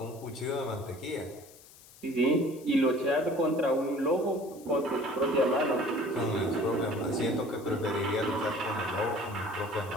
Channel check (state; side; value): noise; left; hiss, 22 dB below the sound